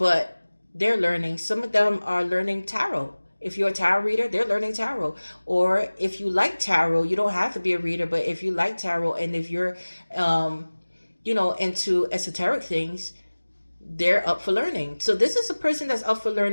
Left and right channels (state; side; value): inverted; both; correlation -1.00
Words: they're learning. Some of them are learning tarot. If you're a tarot reader, they're learning tarot. Or if you like tarot, you don't have to be a reader, but if you like tarot, and if you're into esoteric things, they're up for learning. So this is a person that's up for